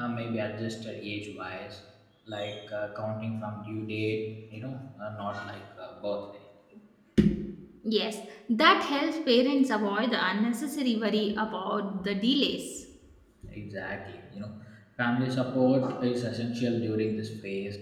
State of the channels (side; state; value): both; identical; correlation 1.00